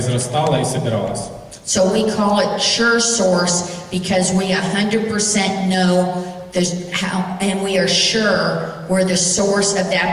и собиралось. So we call it sure source because we 100% know how, and we are sure where the source of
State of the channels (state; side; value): identical; both; correlation 1.00